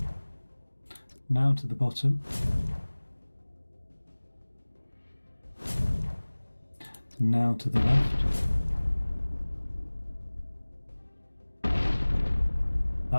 Now to the bottom. Now to the left.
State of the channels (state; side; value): inverted; both; correlation -1.00